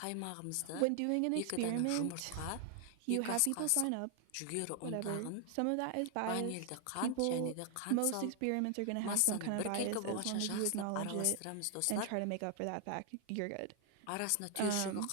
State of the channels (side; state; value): both; different; correlation 0.00